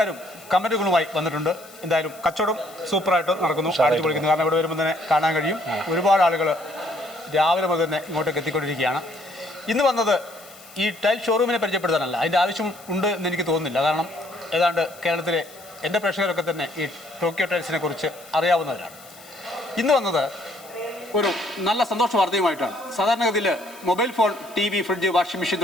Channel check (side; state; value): left; noise; hiss, 21 dB below the sound